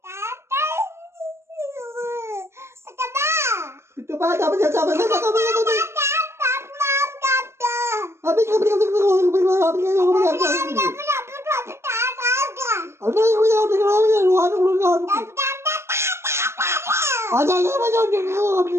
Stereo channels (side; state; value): left; late; 0.13 ms